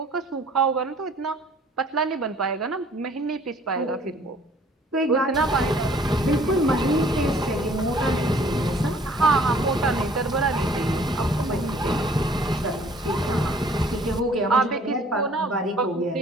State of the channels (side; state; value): both; normal; correlation 0.56